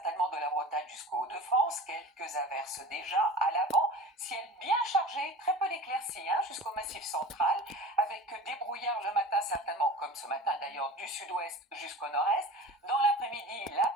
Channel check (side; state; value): both; normal; correlation 0.37